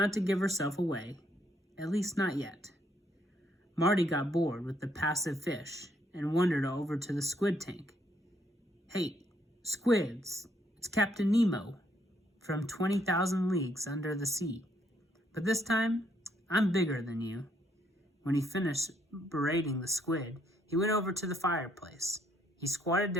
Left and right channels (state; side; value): normal; both; correlation 0.71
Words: to give herself away, at least not yet. Marty got bored with the passive fish and wandered over to the squid tank. "Hey, squids, it's Captain Nemo from 20,000 Leagues Under the Sea. But this time, I'm bigger than you." When he finished berating the squid, he went over to the fireplace. He squatted